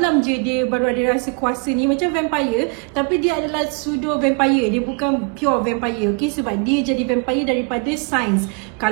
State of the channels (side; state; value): left; quieter; 33.8 dB